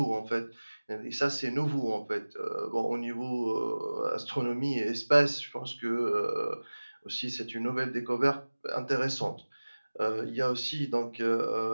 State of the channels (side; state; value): both; inverted; correlation -1.00